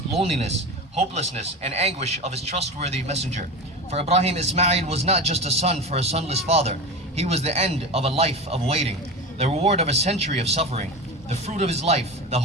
loneliness, hopelessness and anguish of his trustworthy messenger. For Ibrahim, Ismail was not just a son for a sonless father. He was the end of a life of waiting, the reward of a century of suffering, the fruit of his life, the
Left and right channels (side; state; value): both; normal; correlation 0.26